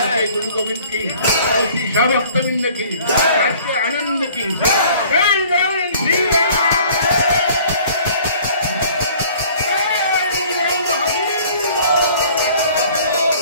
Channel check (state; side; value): inverted; both; correlation -0.52